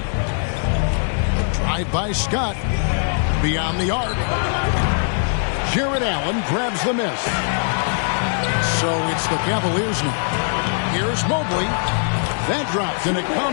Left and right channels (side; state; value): right; silent; 65 dB below the other